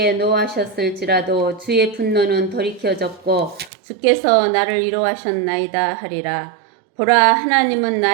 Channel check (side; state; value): left; drops out; at 3.7 s